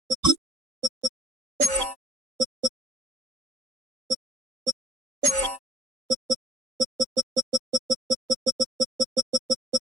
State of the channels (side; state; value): left; late; 3.8 ms